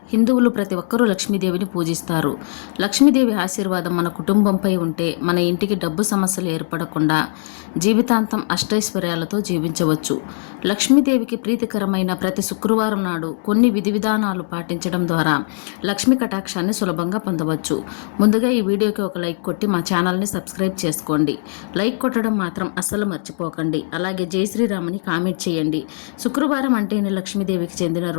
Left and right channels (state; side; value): silent; right; 65 dB below the other